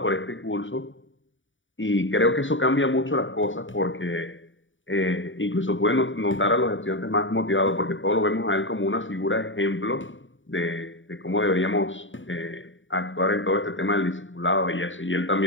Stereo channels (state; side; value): late; right; 0.56 ms